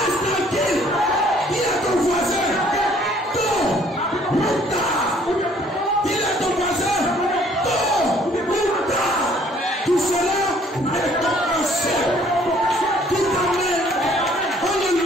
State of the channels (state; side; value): normal; both; correlation 0.60